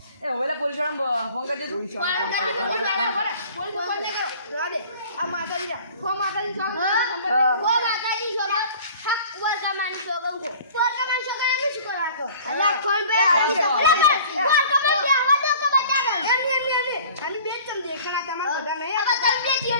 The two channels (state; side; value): inverted; both; correlation -0.48